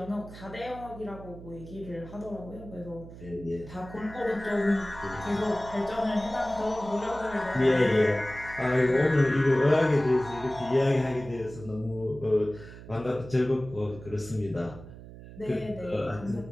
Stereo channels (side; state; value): right; noise; hum, 15 dB below the sound